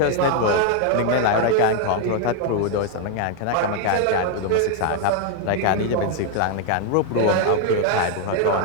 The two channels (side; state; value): both; different; correlation 0.00